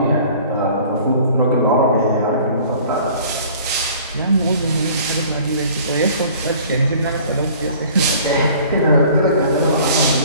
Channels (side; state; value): both; inverted; correlation -0.49